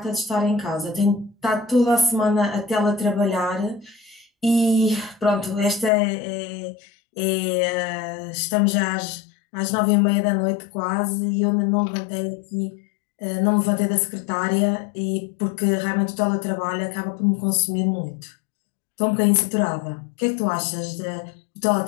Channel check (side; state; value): right; drops out; at 5.9 s